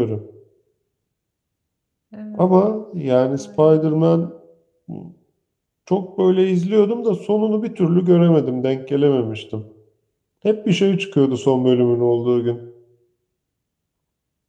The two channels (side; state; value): both; identical; correlation 1.00